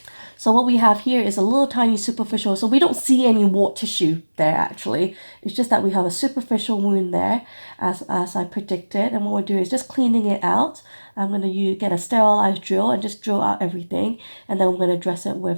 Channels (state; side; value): inverted; both; correlation -1.00